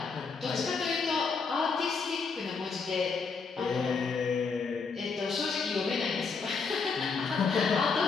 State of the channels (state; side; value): quieter; right; 5.0 dB